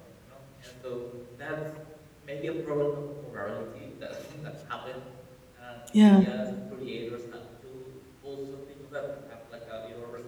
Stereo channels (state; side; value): identical; both; correlation 1.00